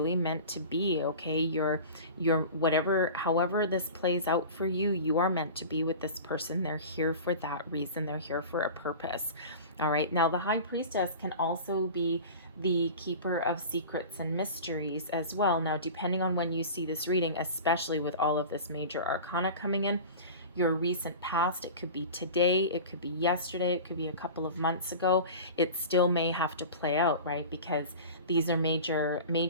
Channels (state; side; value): inverted; both; correlation -0.35